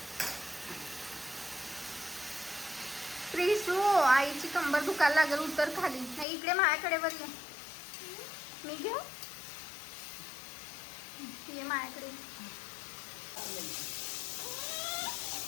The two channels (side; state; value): right; drops out; at 6.2 s